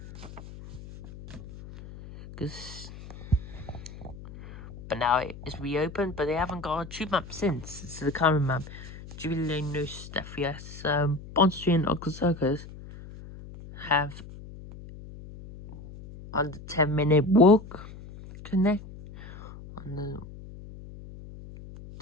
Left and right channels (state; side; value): noise; left; hum, 15 dB below the sound